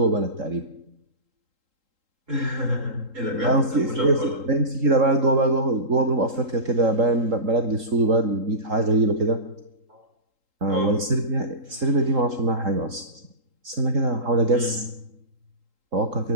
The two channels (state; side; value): late; left; 3.8 ms